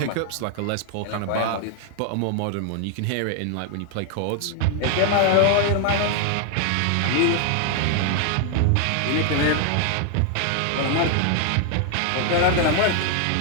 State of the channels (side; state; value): both; different; correlation 0.00